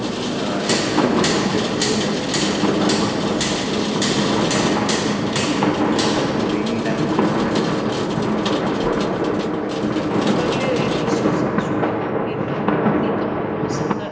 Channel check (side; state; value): both; identical; correlation 1.00